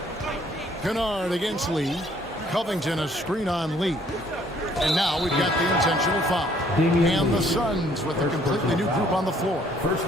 Kennard against Lee. Covington a screen-on lead. And now we've got the intentional foul. And the Suns with a completely new group on the floor. First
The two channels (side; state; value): both; normal; correlation 0.62